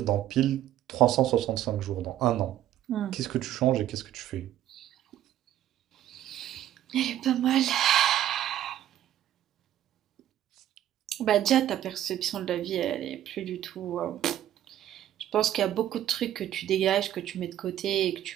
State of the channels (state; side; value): quieter; left; 12.2 dB